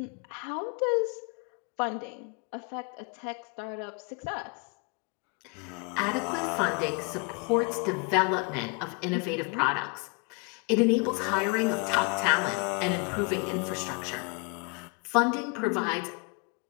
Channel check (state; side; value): quieter; right; 32.8 dB